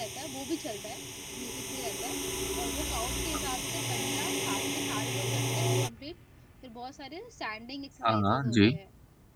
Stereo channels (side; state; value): both; identical; correlation 1.00